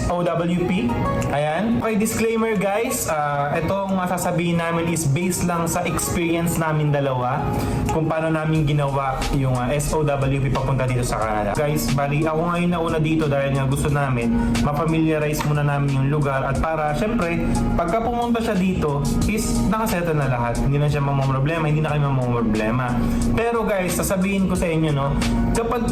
Ayan. Okay, disclaimer guys. Itong masasabihin namin is based lang sa experience namin dalawa kung paano namin ginawa yung SOWP papunta dito sa Canada. Guys, bali ako ngayon na una dito dahil nga gusto namin ma-familiarize muna namin yung lugar at para syempre pagka pumunta siya dito is nakasettle na lahat. Hindi na siya mamamroblema, hindi na kayo mamamroblema. Pero guys, sasabihin ko sa inyo no, kapag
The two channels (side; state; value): both; identical; correlation 1.00